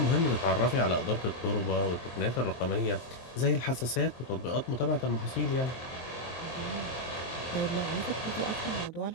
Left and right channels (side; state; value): right; late; 23 ms